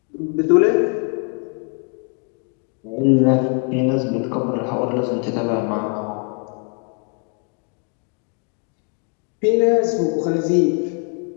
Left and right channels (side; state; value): right; quieter; 35.5 dB